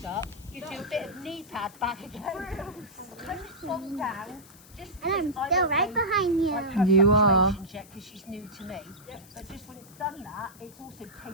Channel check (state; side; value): noise; left; hiss, 22 dB below the sound